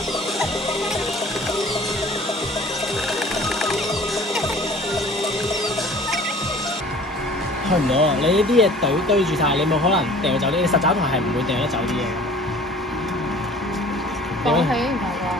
去唔到啊！你呢啲嘢堆住晒，你冇可能掉走啲。你實找台係唔會掉得走啲嘢嘅。放棄唔係啩？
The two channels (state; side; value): normal; both; correlation 0.48